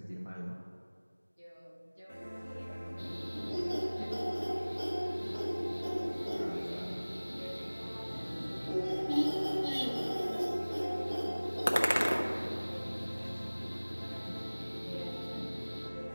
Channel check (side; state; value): both; inverted; correlation -1.00